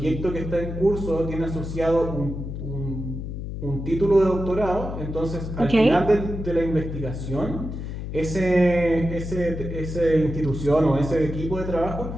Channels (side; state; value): left; noise; hum, 6 dB below the sound